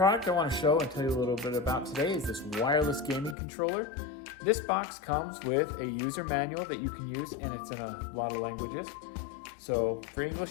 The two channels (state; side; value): drops out; right; at 3.4 s